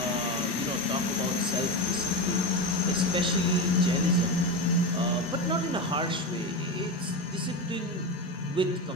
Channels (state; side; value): normal; both; correlation 0.18